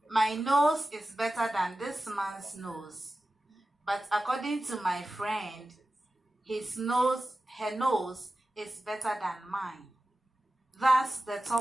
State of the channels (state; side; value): normal; both; correlation 0.94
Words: my nose is better than this man's nose. But according to my friend, her nose is better than mine. That's the